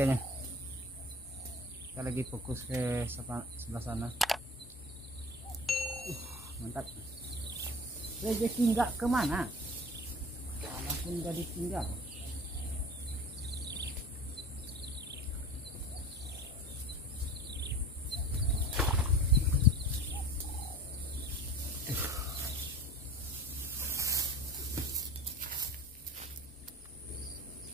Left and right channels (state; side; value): normal; both; correlation 0.39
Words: Kita lagi fokus ke sebelah sana. Mantap. Rezeki nggak kemana, walaupun udah ditinggal.